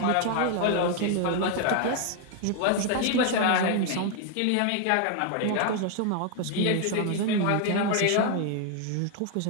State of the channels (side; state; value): both; different; correlation 0.00